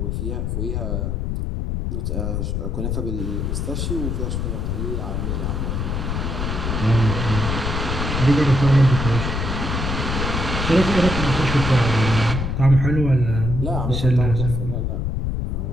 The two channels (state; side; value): noise; left; rumble, 1 dB below the sound